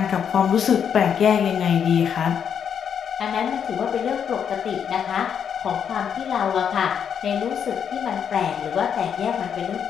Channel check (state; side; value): quieter; right; 7.9 dB